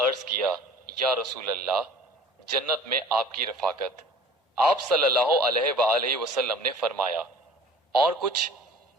अर्ज किया, या रसूल अल्लाह, जन्नत में आपकी रफाकत। आप सल्लल्लाहु अलैहि वआलैहि वसल्लम ने फरमाया, और कुछ?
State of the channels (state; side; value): normal; both; correlation 0.46